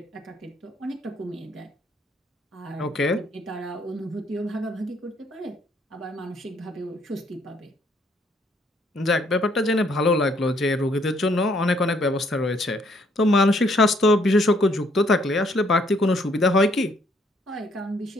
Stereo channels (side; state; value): both; normal; correlation 0.67